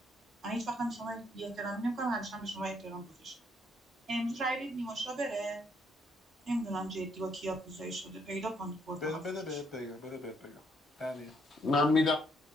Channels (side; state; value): both; normal; correlation 0.71